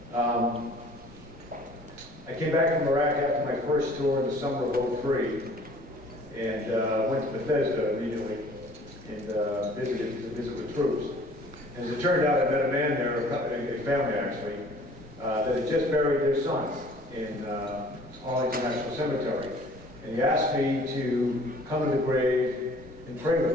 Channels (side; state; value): both; normal; correlation 0.52